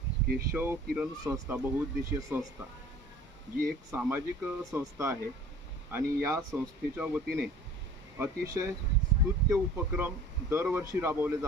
केशव किरण संस्था, बहुउद्देशीय संस्था, जी एक सामाजिक संस्था आहे आणि या संस्थेच्या वतीने अतिशय स्तुत्य उपक्रम दरवर्षी राबवले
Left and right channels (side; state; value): both; normal; correlation 0.47